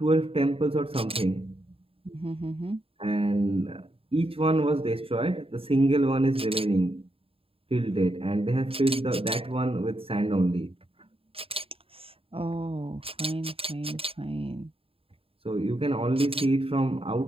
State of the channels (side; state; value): left; late; 0.27 ms